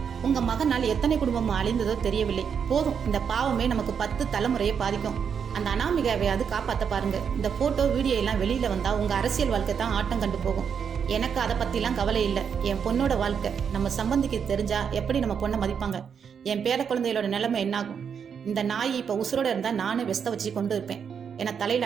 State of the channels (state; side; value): quieter; left; 7.1 dB